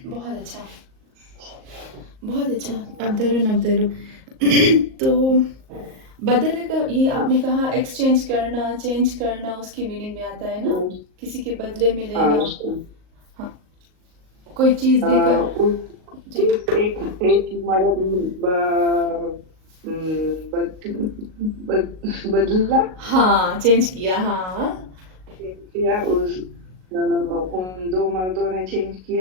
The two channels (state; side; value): late; left; 38 ms